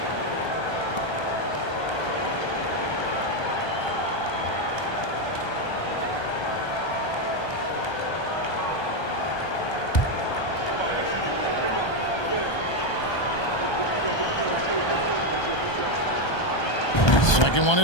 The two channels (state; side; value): late; right; 1.2 ms